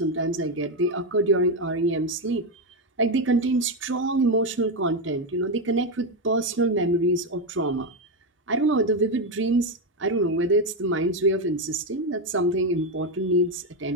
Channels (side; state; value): both; normal; correlation 0.08